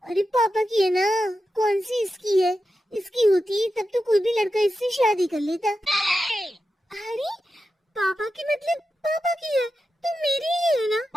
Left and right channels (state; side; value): normal; both; correlation 0.90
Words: अरे पापा की है ना, कौन सी इसकी है? इसकी होती तब तो कोई भी लड़का इससे शादी कर लेता। अरे पापा की मतलब पापा की है तो मेरी ही है